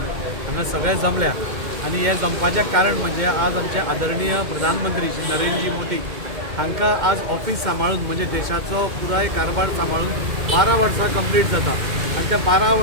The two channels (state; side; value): late; left; 2.1 ms